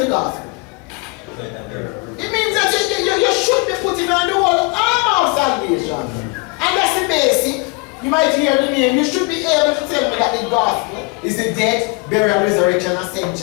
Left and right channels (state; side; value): quieter; right; 28.6 dB